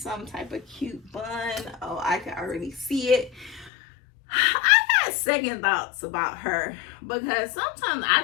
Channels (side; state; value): right; drops out; at 3.7 s